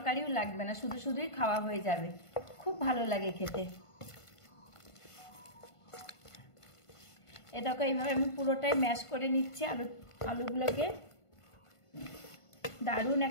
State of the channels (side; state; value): right; late; 1.5 ms